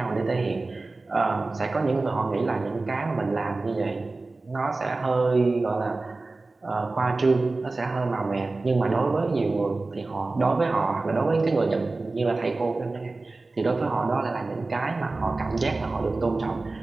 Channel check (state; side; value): quieter; left; 3.4 dB